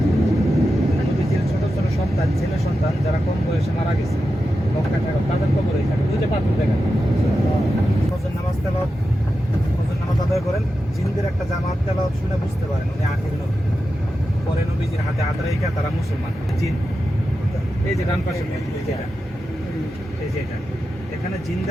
নবীজির ছোট ছোট সন্তান ছেলে সন্তান যারা কম বয়সে মারা গেছে মক্কা থেকে তাদের কবর এখানে ওই যে পাথর দেখেন ফজর নামাজ তেলাওয়াত ফজর নামাজ আদায় করেন জিনদের একটা জামাত তেলাওয়াত শুনে বুঝতে পারেন উনি আখির নবী পরে নবীজির হাতে হাত রেখে তারা মুসলমান জিন এই যে ডান পাশে এই যে এটা এখানে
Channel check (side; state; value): both; normal; correlation 0.90